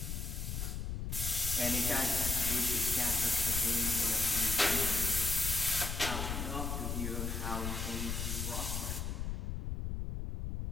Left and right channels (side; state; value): left; noise; rumble, 3 dB below the sound